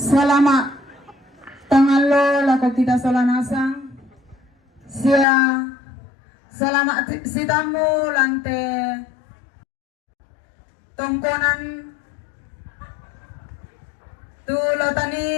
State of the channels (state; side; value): drops out; right; at 5.2 s